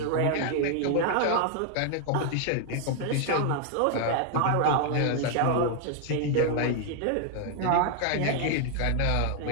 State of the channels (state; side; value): different; both; correlation 0.00